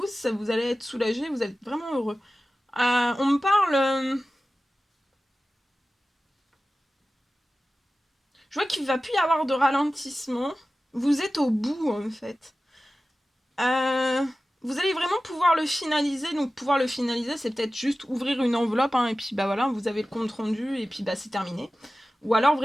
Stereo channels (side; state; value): both; normal; correlation 0.95